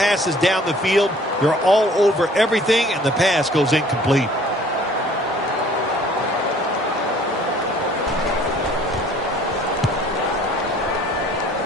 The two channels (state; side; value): normal; both; correlation 0.54